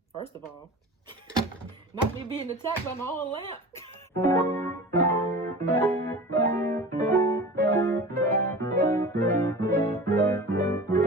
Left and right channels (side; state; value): both; normal; correlation 0.36